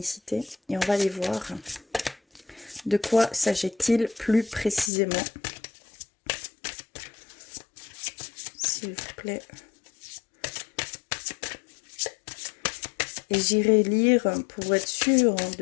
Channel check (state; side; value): drops out; right; at 4.9 s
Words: et on va aller voir de quoi s'agit-il plus précisément. S'il vous plaît. Et j'irai lire pour être sûr